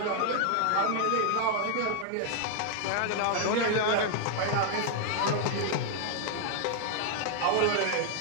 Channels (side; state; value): both; different; correlation 0.00